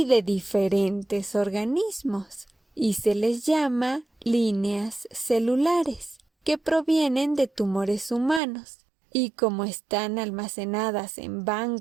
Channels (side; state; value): left; drops out; at 8.4 s